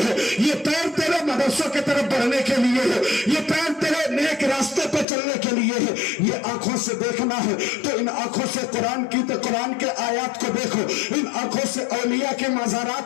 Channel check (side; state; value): right; drops out; at 5.1 s